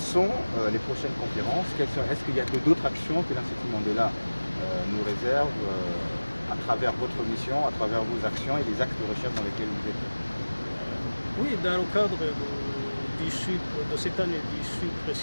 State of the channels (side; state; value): both; inverted; correlation -1.00